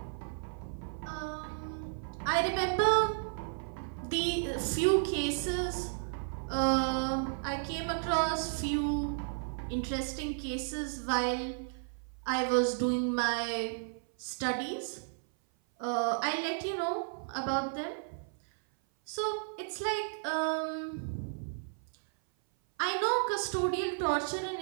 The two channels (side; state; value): left; silent; 55 dB below the other